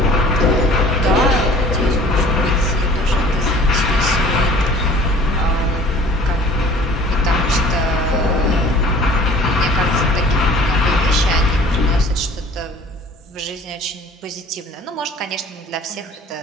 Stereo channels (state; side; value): normal; both; correlation 0.48